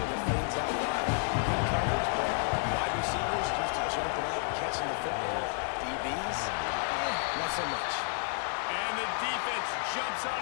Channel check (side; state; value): right; silent; 57 dB below the other